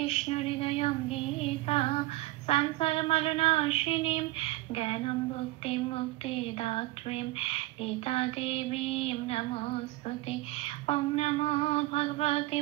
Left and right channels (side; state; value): left; quieter; 19.0 dB